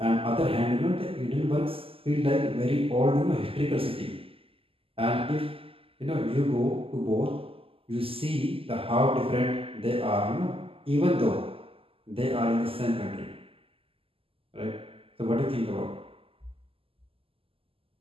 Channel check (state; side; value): late; left; 0.27 ms